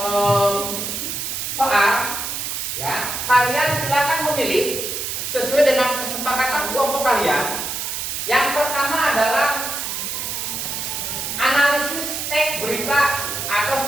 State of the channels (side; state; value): right; noise; hiss, 4 dB below the sound